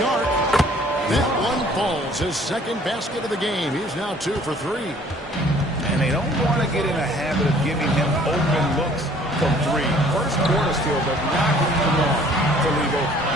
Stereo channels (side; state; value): both; normal; correlation 0.56